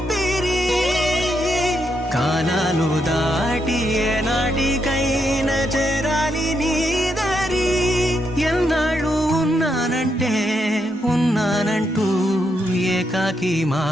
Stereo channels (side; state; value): both; normal; correlation 0.80